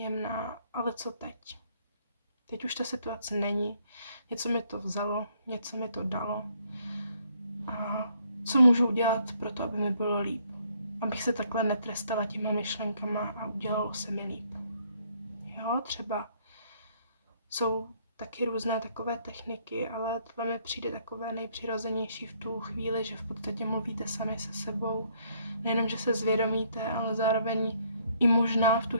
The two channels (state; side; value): inverted; both; correlation -0.67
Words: ale co teď? Teď už ta situace není. Něco mi to vzalo, něco mi to dalo. A co můžu udělat pro to, aby mi bylo líp? Abych se takhle netrestala těma myšlenkama a udělalo se mi líp. Jo, třeba jsou taky různé takové techniky, ale tohle mi přijde takové nejpřirozenější v tu chvíli, že v podstatě mluvíte sami se sebou. Nejenom, že se zvědomíte, ale zároveň i možná v tu